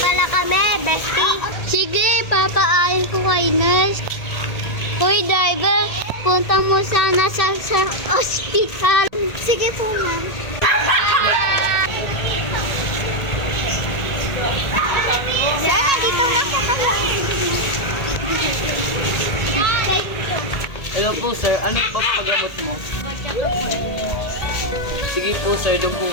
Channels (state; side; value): late; right; 1.8 ms